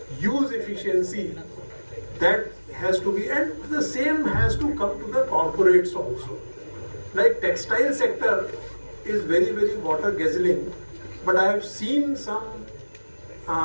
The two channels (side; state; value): both; inverted; correlation -1.00